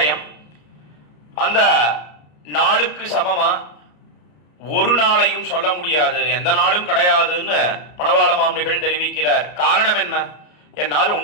அந்த நாளுக்கு சமமா ஒரு நாளையும் சொல்ல முடியாது, எந்த நாளும் கிடையாதுன்னு மணவாள மாமுனிகள் தெரிவிக்கிறார். காரணம் என்ன என்னால்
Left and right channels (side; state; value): right; late; 33 ms